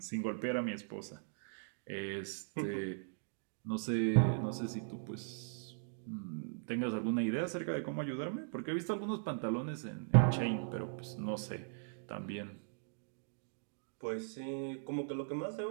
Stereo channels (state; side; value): silent; left; digital silence